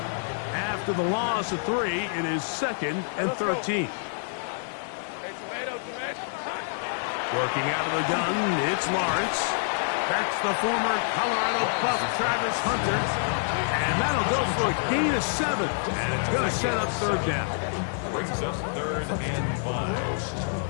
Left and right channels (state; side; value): silent; right; 60 dB below the other